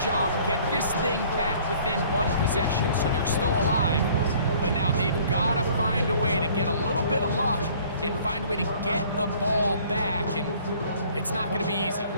get this thing back within 1 possession, so they're still alive. But now they've got to find a way to get a little bit of luck and find a way to get the ball back, and it's not going to be easy.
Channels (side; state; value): both; inverted; correlation -0.54